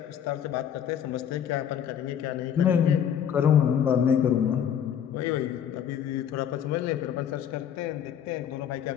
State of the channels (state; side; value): quieter; right; 9.0 dB